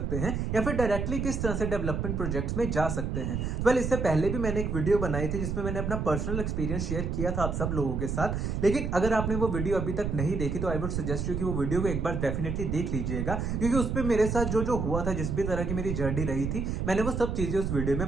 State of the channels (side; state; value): right; noise; rumble, 2 dB below the sound